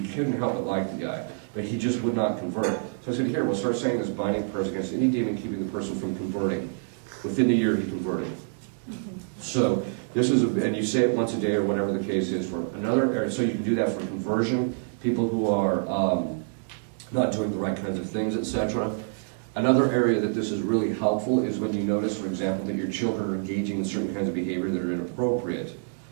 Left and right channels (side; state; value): left; silent; digital silence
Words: couldn't help but like the guy. But he just would not convert. So I said, here, we'll start saying this binding prayers against any demon keeping the person from converting. Within the year, he converted. So this is, and you say it once a day or whatever the case is for another area. So you can do that for conversion, people who are not doing the right kinds of things, etc. Another area that this is really helpful is when you notice, for example, that your children are engaging in certain kinds of behavior that are inappropriate.